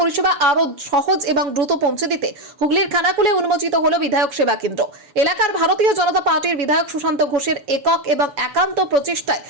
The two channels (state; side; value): late; left; 7.1 ms